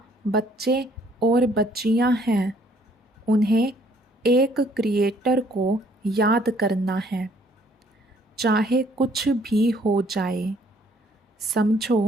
बच्चे और बच्चियां हैं, उन्हें एक क्रिएटर को याद करना है, चाहे कुछ भी हो जाए।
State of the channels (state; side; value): normal; both; correlation 0.62